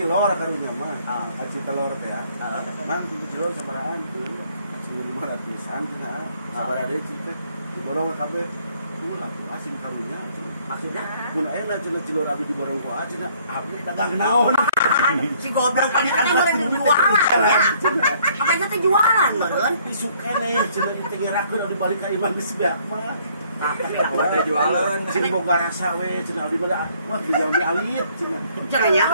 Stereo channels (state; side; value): inverted; both; correlation -0.63